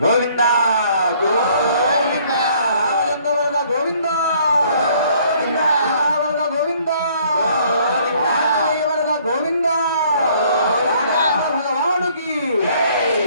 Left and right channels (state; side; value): inverted; both; correlation -0.61